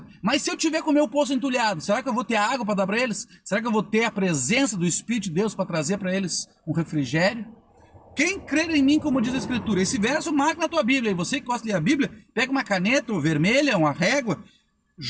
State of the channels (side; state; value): both; identical; correlation 1.00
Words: Mas se eu tiver com o meu poço entulhado, será que eu vou ter água para dar para eles? Será que eu vou ter a presença do Espírito de Deus para trazer para eles um refrigério? Quem crer em mim, como diz a Escritura, esse verso marca na tua Bíblia. E você que gosta de ler a Bíblia, pega uma caneta ou vermelha, uma régua.